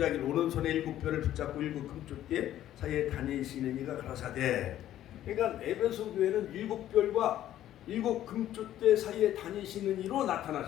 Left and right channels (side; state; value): right; quieter; 12.4 dB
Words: 오른손에 7별을 붙잡고 7 금쪽대 사이에 다니시는 이가 가라사대. 그러니까 에베소 교회는 7별과 7 금쪽대 사이에 다니시는 이로